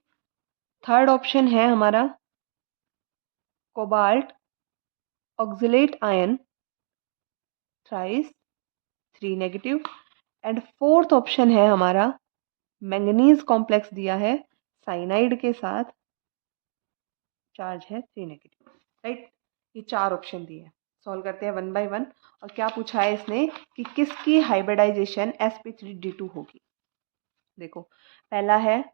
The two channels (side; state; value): left; silent; digital silence